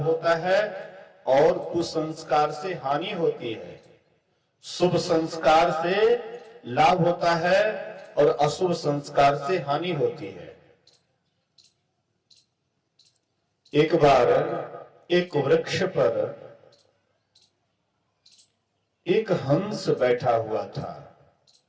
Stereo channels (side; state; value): both; identical; correlation 1.00